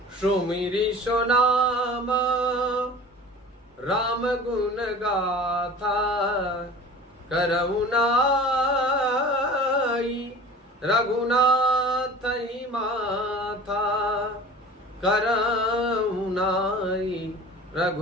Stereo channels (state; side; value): normal; both; correlation 0.40